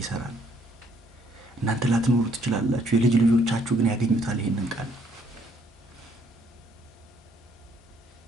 ይሰራል። እናንተ ላትኖሩ ትችላላችሁ። የልጅ ልጆቻችሁ ግን ያገኙታል ይሄንን ቃል።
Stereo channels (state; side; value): normal; both; correlation 0.67